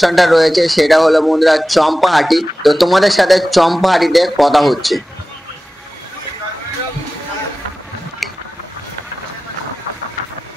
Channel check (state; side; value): normal; both; correlation 0.95